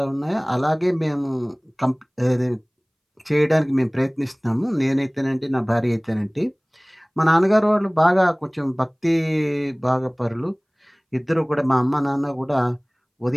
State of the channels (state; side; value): identical; both; correlation 1.00